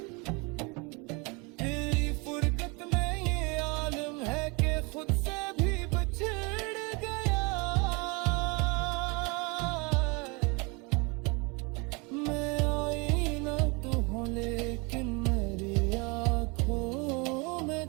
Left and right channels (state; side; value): quieter; left; 29.3 dB